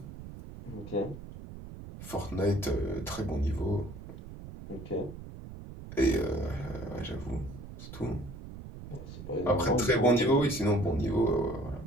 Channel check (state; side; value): noise; right; rumble, 13 dB below the sound